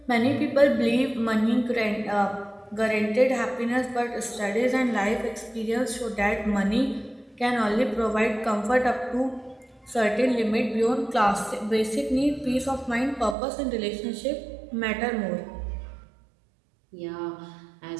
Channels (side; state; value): left; drops out; at 13.4 s